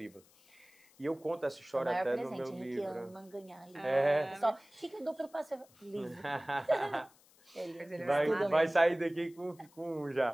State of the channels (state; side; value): noise; left; hiss, 28 dB below the sound